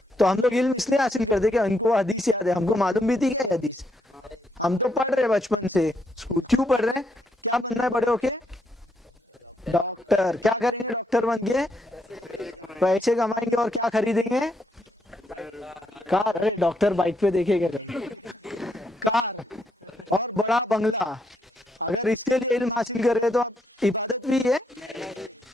तो हम लोग इल्म इसलिए हासिल करते कि इनको हदीस याद है, हमको मालूम भी थी क्या हदीस, हम तो पढ़ रहे बचपन से स्कूल। क्यों पढ़ रहे हैं? अब बनना बड़े होके डॉक्टर। क्या करेंगे डॉक्टर बन के? पैसे कमाएंगे और क्या खरीदेंगे? कार। अरे डॉक्टर बाइक पे देखेगा कार और बड़ा बंगला। अगर इसके लिए इल्म हासिल कर रहे तो इबादत भी है,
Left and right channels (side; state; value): both; normal; correlation 0.76